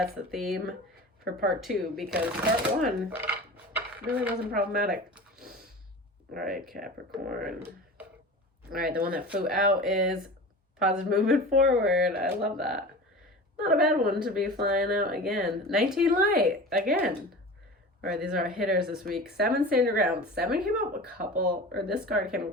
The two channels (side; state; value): both; normal; correlation 0.34